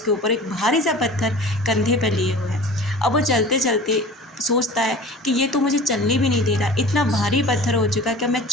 ऊपर एक भारी सा पत्थर कंधे पे लिए हुए है। अब वो चलते चलते सोचता है कि ये तो मुझे चलने भी नहीं दे रहा, इतना भारी पत्थर हो चुका है कि मैं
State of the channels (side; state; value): both; normal; correlation 0.40